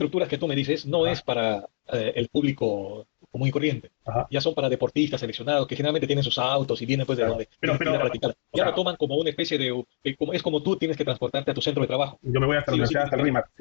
que tú me dices no ajá, es para el público común y corriente. ajá, Ya son para deportistas seleccionados que generalmente tienen sus autos y vienen pues de claro. donde tienen que ir a practicar. O Ya lo sea, toman como una especie es como tú tienes que transportarte a tu centro de trabajo. yo me voy hasta la Sí o sí universidad, tienes hasta el que ir. RIMAC,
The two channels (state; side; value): silent; right; digital silence